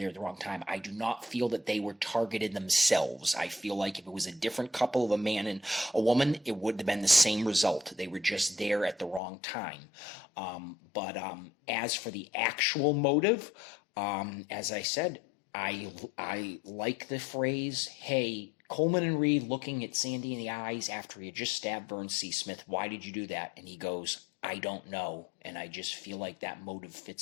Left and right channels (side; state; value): right; drops out; at 9.2 s